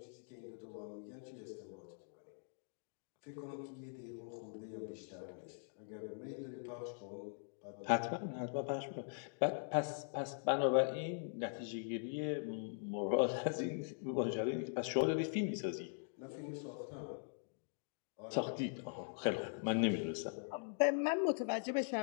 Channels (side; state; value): right; silent; digital silence